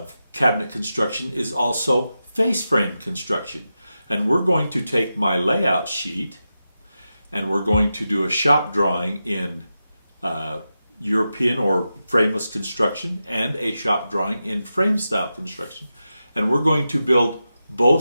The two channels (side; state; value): both; inverted; correlation -0.90